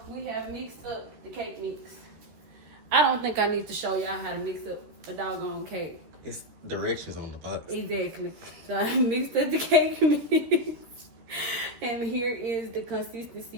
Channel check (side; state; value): left; late; 13 ms